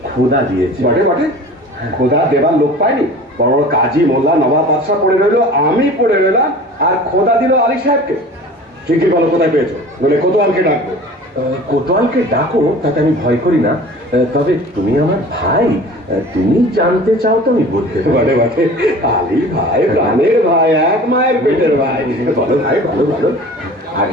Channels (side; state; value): both; normal; correlation 0.41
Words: খোদা দিয়েছে। বটে বটে, খোদা দেবার লোক পায়নি। বড় বড় কাজী, মোল্লা, নবাব, বাদশা পড়ে রইলো, আমি পড়ে রইলাম, আর খোদা দিল আলী সাহেবকে। ঠিকই বলো কোথায় পেয়েছো, বলে কোতোয়ালকে ডাকবো। কোতোয়ালকে ডাকো, তাতে আমি ভয় করি না। তবে তুমি আমার ভাই, তুমি জানতে চাও তো আমি বলতে পারি। বটে বটে, আলী ভাই প্রাণের ভাই, এক মায়ের পেটের ভাই। বলো ভাই, বলো বলো।